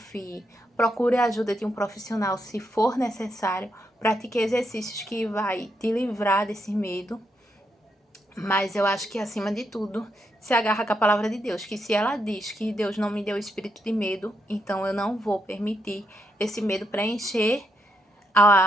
Procure a ajuda de um profissional se for necessário. Pratique exercícios que vai te livrar desse medo. Mas eu acho que, acima de tudo, se agarra com a palavra de Deus. Que se ela diz que Deus não me deu espírito de medo, então eu não vou permitir esse medo preencher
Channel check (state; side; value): normal; both; correlation 0.80